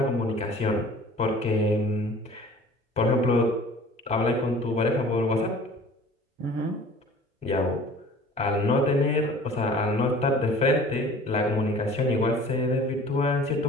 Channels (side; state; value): both; normal; correlation 0.47